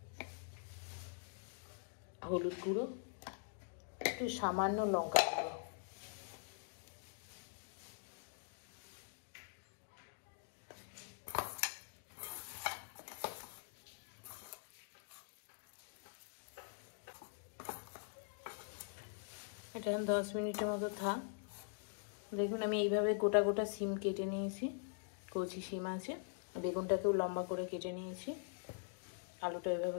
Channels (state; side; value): silent; right; digital silence